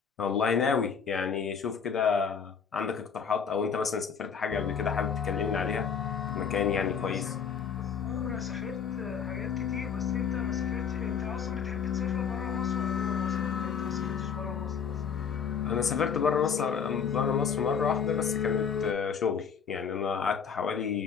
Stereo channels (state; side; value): quieter; right; 6.8 dB